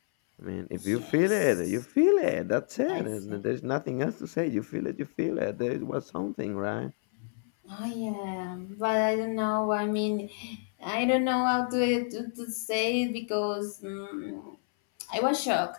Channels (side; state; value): right; silent; 58 dB below the other